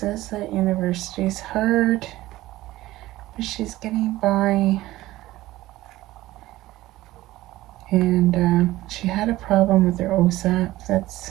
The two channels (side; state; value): left; quieter; 16.8 dB